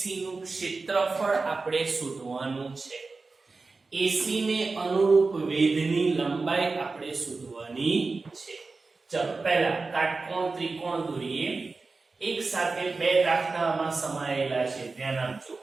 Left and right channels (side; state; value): left; quieter; 3.9 dB